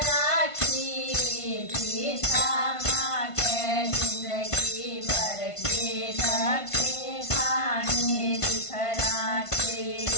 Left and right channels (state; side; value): late; right; 1.5 ms